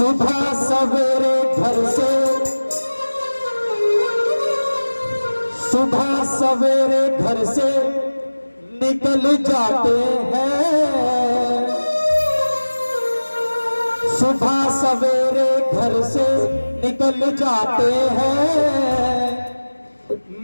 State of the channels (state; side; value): inverted; both; correlation -1.00